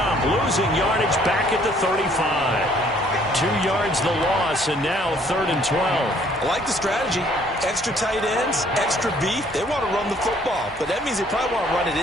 losing yardage back at the 35. 2 yards the loss, and now 3rd and 12. I like the strategy. Extra tight ends, extra beef. They want to run the football, but that means they probably want to run it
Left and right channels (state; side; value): normal; both; correlation 0.61